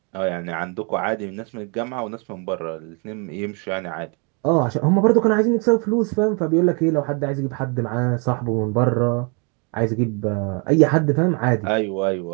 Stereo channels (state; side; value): quieter; left; 34.5 dB